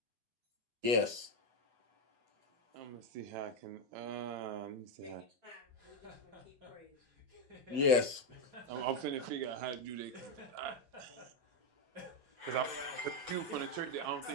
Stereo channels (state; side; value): late; left; 8.1 ms